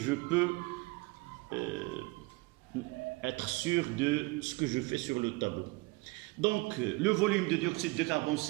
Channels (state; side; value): quieter; left; 24.6 dB